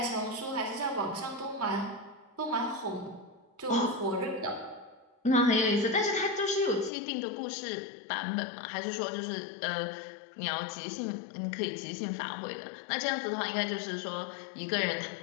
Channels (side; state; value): right; drops out; at 6.9 s